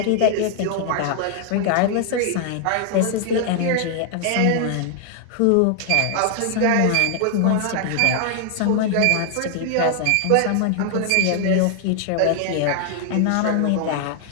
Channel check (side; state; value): both; different; correlation 0.00